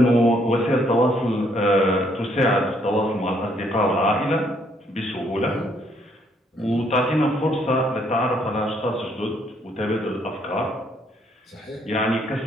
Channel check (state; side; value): normal; both; correlation 0.69